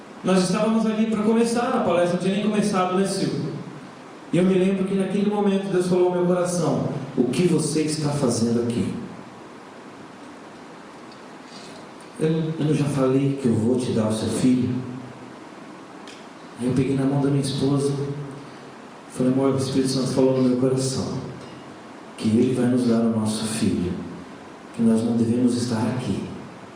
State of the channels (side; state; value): both; identical; correlation 1.00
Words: nós estávamos ali para começar a palestra, não tinha nem começado, né Silvio? E eu me lembro que naquele momento Deus falou ao meu coração: o que você está fazendo aqui? Eu não já falei que eu vou te dar o seu filho? Aí eu peguei na mão da minha esposa, falei: amor, o Espírito Santo falou no meu coração que Ele vai nos dar o nosso filho, que nós não devemos estar aqui.